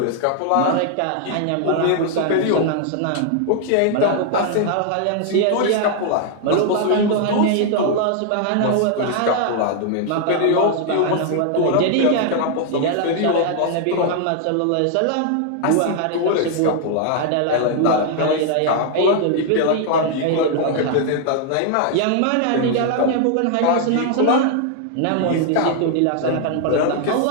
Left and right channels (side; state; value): both; different; correlation 0.00